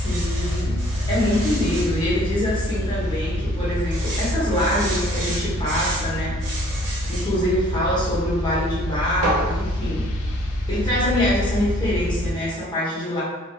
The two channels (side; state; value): both; normal; correlation 0.58